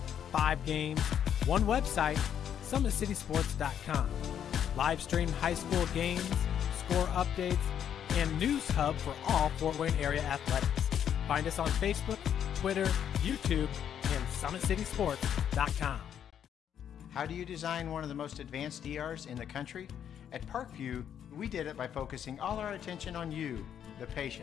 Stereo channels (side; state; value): right; quieter; 9.2 dB